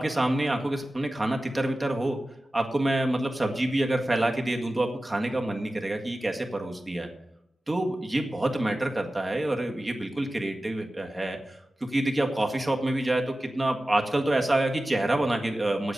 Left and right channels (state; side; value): normal; both; correlation 0.95